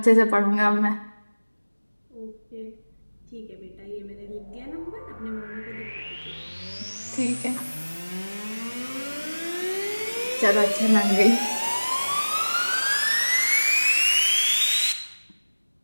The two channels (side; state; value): both; inverted; correlation -1.00